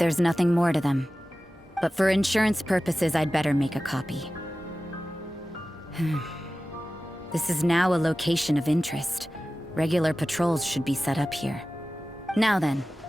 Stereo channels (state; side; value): normal; both; correlation 0.95